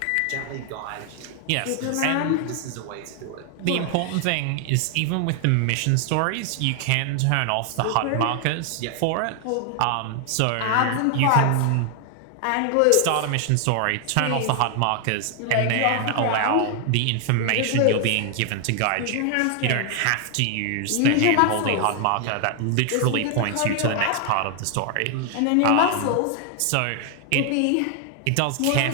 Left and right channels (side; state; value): both; different; correlation 0.00